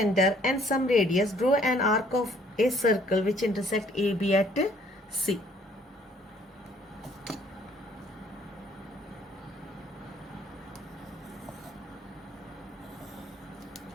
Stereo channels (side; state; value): both; normal; correlation 0.61